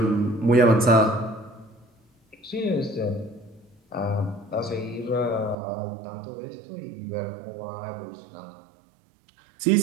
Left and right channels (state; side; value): drops out; left; at 5.6 s